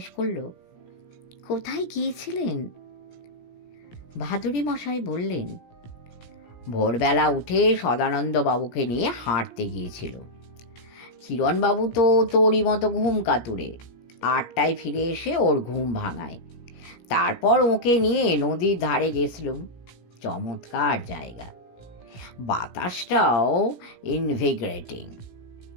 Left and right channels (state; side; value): late; right; 17 ms